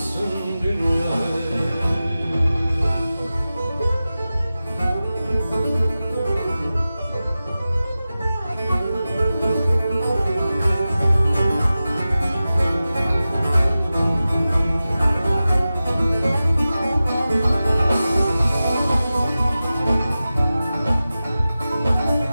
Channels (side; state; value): both; inverted; correlation -0.95